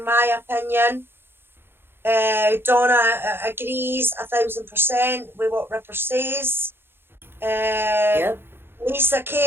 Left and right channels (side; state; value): left; late; 0.11 ms